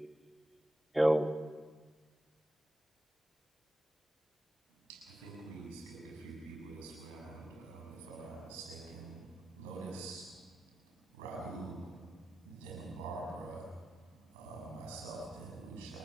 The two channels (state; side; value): normal; both; correlation 0.91